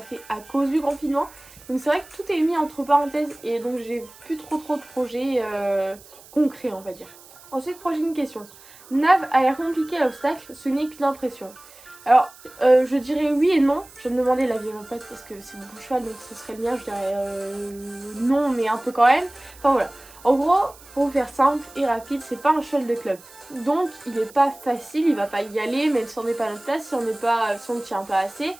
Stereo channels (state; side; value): noise; right; hiss, 22 dB below the sound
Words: à cause du confinement. Donc c'est vrai que tout est mis entre parenthèses et donc j'ai plus trop de projets concrets on va dire. Ensuite prochaine question. Nav a l'air compliqué à l'obstacle, ce n'est qu'une impression. Alors je dirais oui et non. Je vais me demander l'avis de mon pote parce que c'est mon cheval donc ce serait le mien. Je dirais non mais un peu quand même. Enfin voilà. En gros, pour faire simple et rapide, c'est pas un cheval de club. Donc il est pas facile, il va pas y aller, même si on n'est pas à notre place, si on ne tient pas assez.